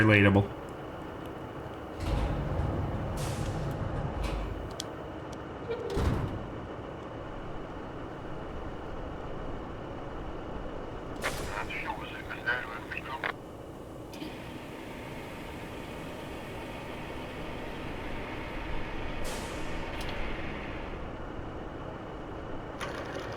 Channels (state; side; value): identical; both; correlation 1.00